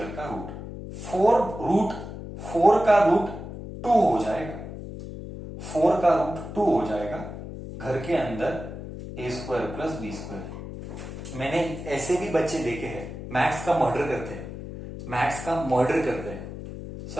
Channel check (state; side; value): noise; left; hum, 10 dB below the sound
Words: का रूट, 4 का रूट 2 हो जाएगा, 4 का रूट 2 हो जाएगा, घर के अंदर ए स्क्वायर प्लस बी स्क्वायर। मैंने ऐसे भी बच्चे देखे हैं मैथ्स का मर्डर करते हैं,